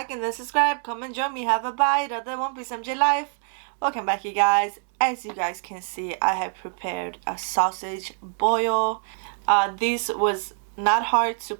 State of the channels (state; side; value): silent; left; 60 dB below the other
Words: and then subscribe. Come and join me. Have a bite of the One Piece MJ life. Welcome back, you guys. As you guys can see, I have prepared a sausage boil. This was not hard to